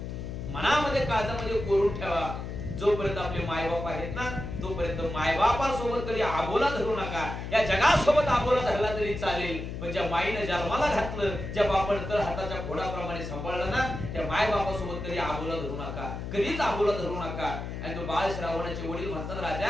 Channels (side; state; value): left; noise; hum, 6 dB below the sound